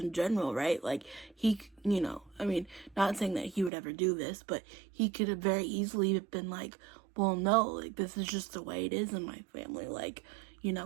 general, right? Like, he, you know, I mean, not saying that he would ever do this, but he could have very easily been like, well, no, like, this is just the way it is in my family. Like, you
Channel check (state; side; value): drops out; left; at 3.7 s